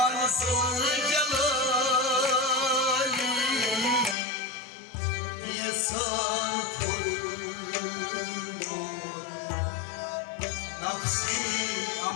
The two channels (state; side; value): drops out; right; at 4.2 s